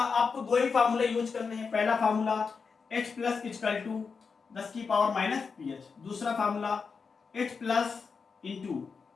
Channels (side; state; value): right; quieter; 5.3 dB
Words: आपको 2 ही फार्मूले यूज करने हैं, पहला formula H plus equal to 10 की पावर माइनस पीएच, दूसरा formula H plus into